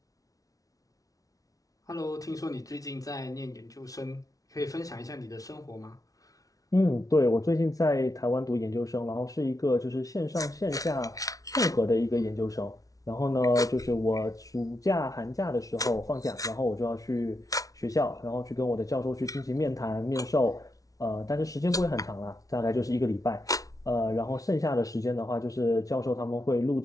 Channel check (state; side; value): late; right; 0.17 ms